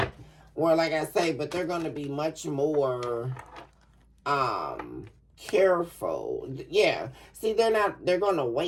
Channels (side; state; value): both; identical; correlation 1.00